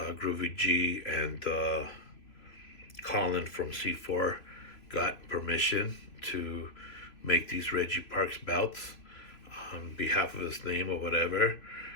G and Colin from C4 got permission to make these Reggie Parks belts on behalf of his name or whatever.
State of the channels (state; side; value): late; right; 3.0 ms